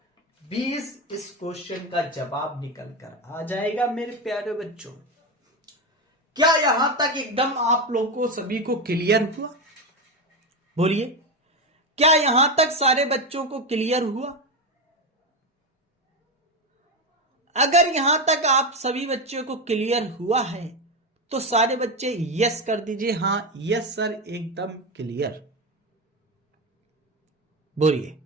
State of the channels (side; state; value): both; normal; correlation 0.15